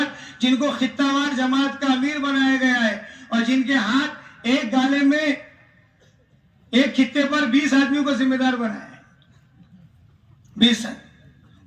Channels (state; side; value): identical; both; correlation 1.00